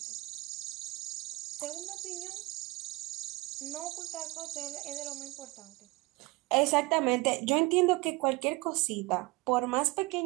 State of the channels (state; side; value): quieter; left; 22.0 dB